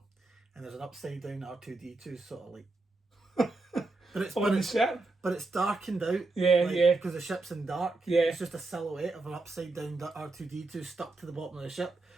and there's an upside down R2D2 sort of like. But it's darkened out. Yeah. Because the ship's in dark. Yeah. It's just a silhouette of an upside down R2D2 stuck to the bottom of the ship.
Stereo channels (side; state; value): left; quieter; 3.3 dB